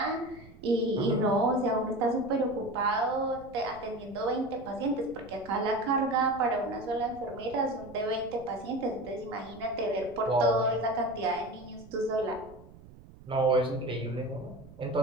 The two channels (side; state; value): right; noise; rumble, 20 dB below the sound